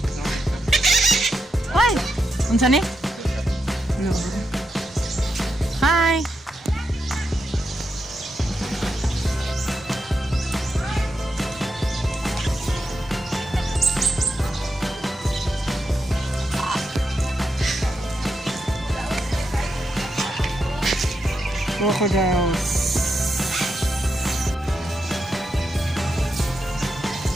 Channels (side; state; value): both; normal; correlation 0.85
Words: Ay! Unsa ni? Hello. Hi! Crocodiles.